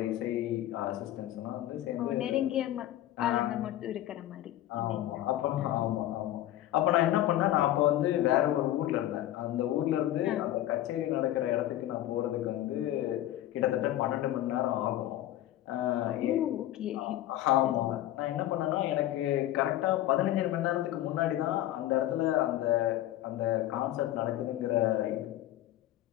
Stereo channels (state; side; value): quieter; right; 13.8 dB